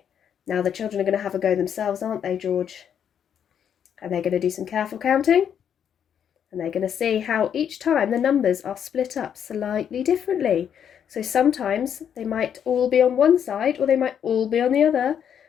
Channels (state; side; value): quieter; right; 8.6 dB